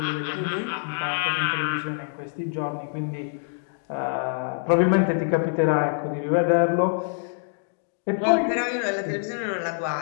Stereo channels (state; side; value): silent; right; digital silence